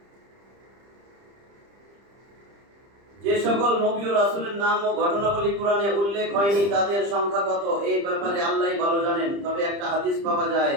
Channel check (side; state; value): left; late; 30 ms